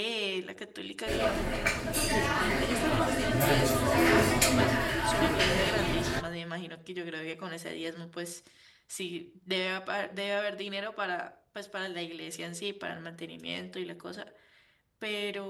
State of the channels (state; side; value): identical; both; correlation 1.00